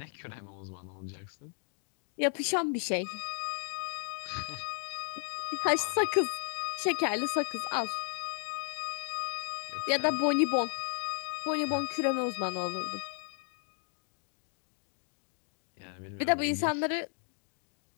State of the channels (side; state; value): right; silent; 55 dB below the other